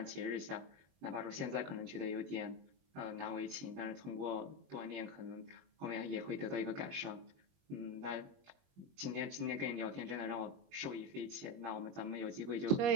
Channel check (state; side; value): late; left; 21 ms